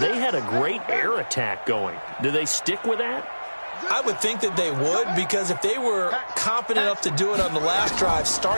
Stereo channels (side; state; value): both; inverted; correlation -1.00